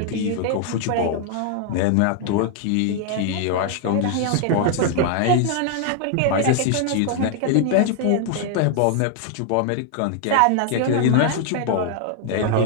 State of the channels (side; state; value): both; different; correlation 0.00